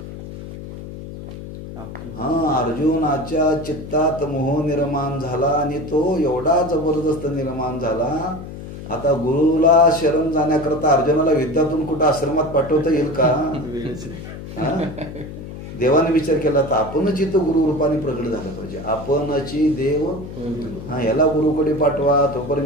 अर्जुनाच्या चित्तात मोह निर्माण झाला आणि तो एवढा जबरदस्त निर्माण झाला. आता गुरुला शरण जाण्याकरता अर्जुनाला विद्यातून कुठं आश्रमात पाठवता येईल का? देवाने विचार केला तर आपणच इथं गुरु रूपाने प्रकट झालं पाहिजे. आपणची देव याला गुरुकडे पाठवा,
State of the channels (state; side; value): noise; left; hum, 11 dB below the sound